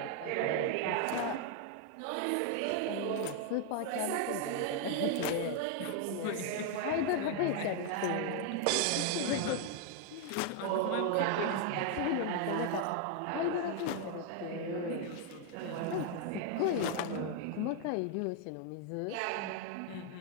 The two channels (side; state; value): both; different; correlation 0.00